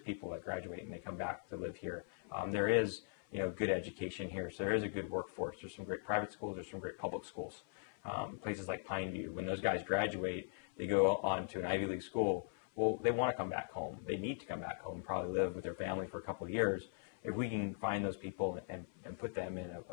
that graduate and they come back to live here. There is, you know, good education here, so there is a good workforce. There's some great private schools, there's some great public schools. Places like Pineview, when those guys graduate, they go on to an Ivy League school. Well, they want to come back home. They need to come back home, probably live with their family for a couple of years. If we can find those people and put them in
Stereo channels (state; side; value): silent; right; 51 dB below the other